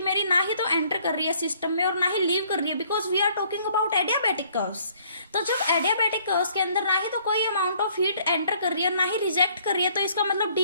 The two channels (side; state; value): both; inverted; correlation -0.62